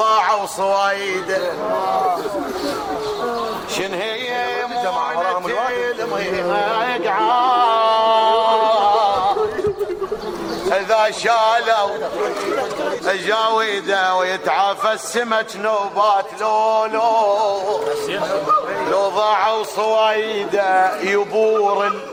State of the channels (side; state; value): both; identical; correlation 1.00